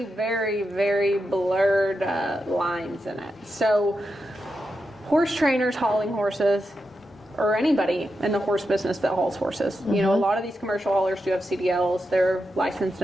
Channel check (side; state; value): both; normal; correlation 0.87